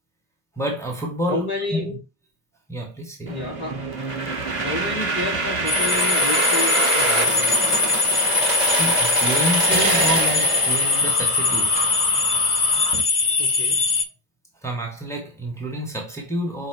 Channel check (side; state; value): right; late; 2.6 ms